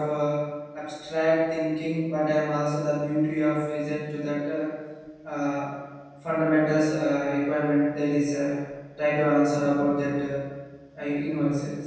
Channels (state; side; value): identical; both; correlation 1.00